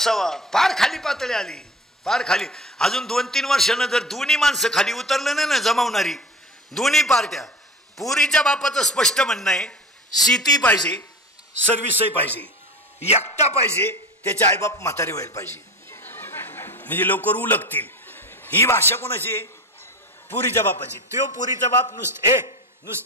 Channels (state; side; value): normal; both; correlation 0.34